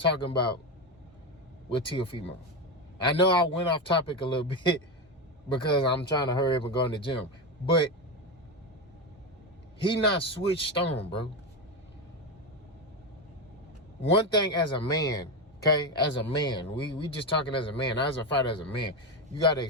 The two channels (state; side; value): normal; both; correlation 0.14